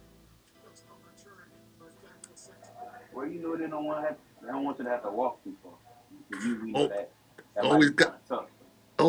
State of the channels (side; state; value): both; identical; correlation 1.00